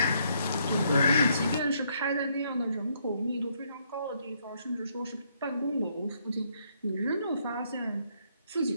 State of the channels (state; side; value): inverted; both; correlation -0.72